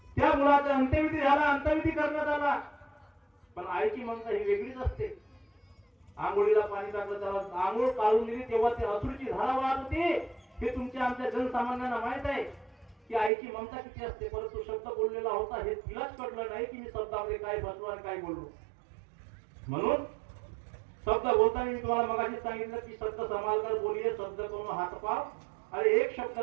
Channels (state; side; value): drops out; left; at 13.3 s